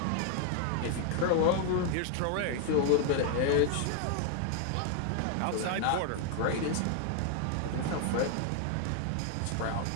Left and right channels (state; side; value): different; both; correlation 0.00